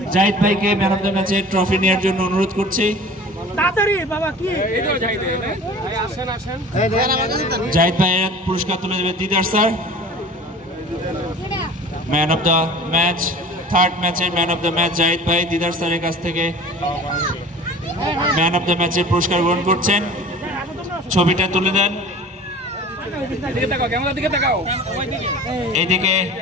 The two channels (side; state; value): both; normal; correlation 0.41